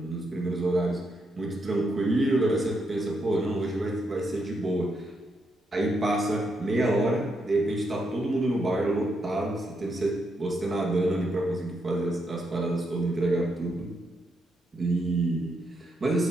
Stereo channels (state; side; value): normal; both; correlation 0.80